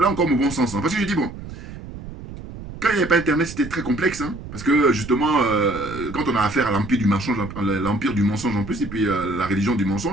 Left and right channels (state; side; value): noise; right; rumble, 12 dB below the sound